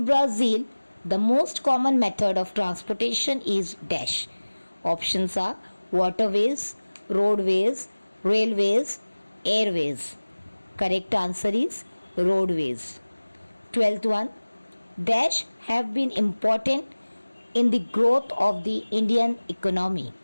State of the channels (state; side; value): inverted; both; correlation -1.00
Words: Brazil, the most common method of transportation is dash. Options are waterways, roadways, railways, airways. Correct answer is roadways. 12th one. Dash have been important in the growth of the Indian economy.